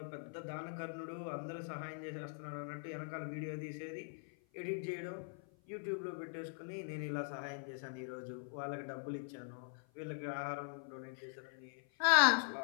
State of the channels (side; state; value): right; silent; 50 dB below the other